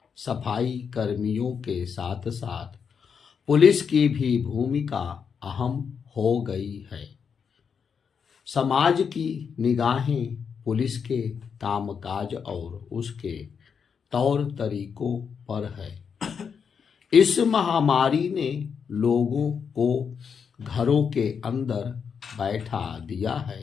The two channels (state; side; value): quieter; right; 6.5 dB